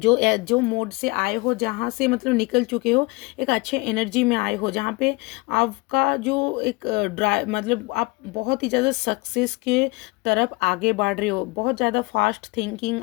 मोड से आए हो, जहाँ से मतलब निकल चुके हो, एक अच्छे एनर्जी में आए हो, जहाँ पे आपका जो एक ड्राइव मतलब आप बहुत ही ज़्यादा सक्सेस के तरफ आगे बढ़ रहे हो। बहुत ज़्यादा फास्ट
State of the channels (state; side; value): quieter; right; 25.1 dB